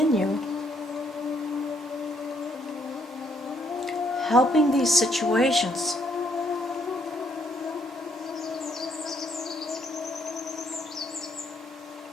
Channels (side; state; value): both; normal; correlation 0.70